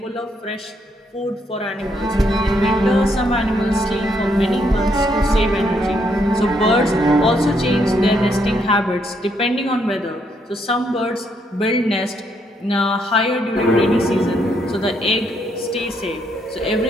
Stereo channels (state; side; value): normal; both; correlation 0.74